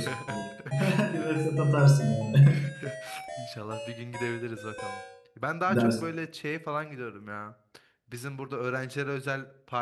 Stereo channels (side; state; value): both; identical; correlation 1.00